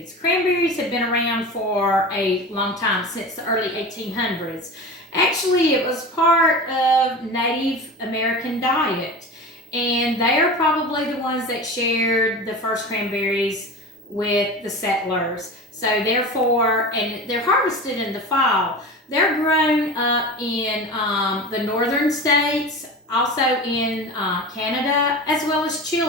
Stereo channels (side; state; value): both; normal; correlation 0.31